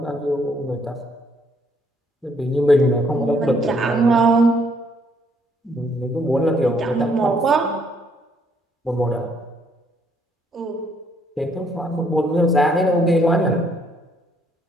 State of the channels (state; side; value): normal; both; correlation 0.68